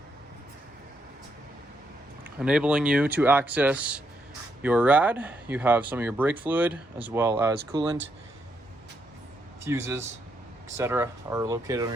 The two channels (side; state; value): both; normal; correlation 0.78